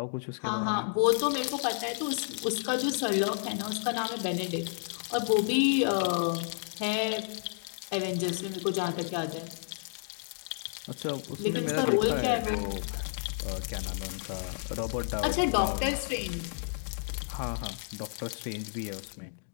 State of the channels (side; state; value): right; silent; digital silence